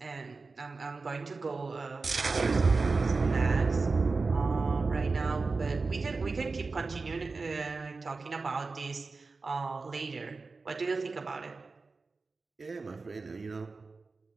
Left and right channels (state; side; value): quieter; left; 4.0 dB